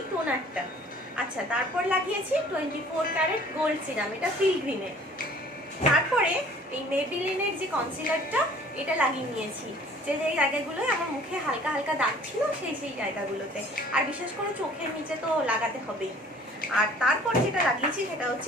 টোনারটা। আচ্ছা, তারপর লাগিয়েছি 24 ক্যারেট গোল্ড সিরাম, এটা পিলগ্রিমের। তারপরে এই মেবিলিনের যে কনসিলারটা এটা লাগিয়ে নিয়েছি, যে জায়গাগুলোয় আমার মুখে হালকা হালকা দাগ ছিল সেই জায়গাগুলোতে, আর বিশেষ করে চোখের নিচে তো লাগাতে হবেই। আর তারপর যেটা লাগিয়েছি সেটা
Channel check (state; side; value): normal; both; correlation 0.52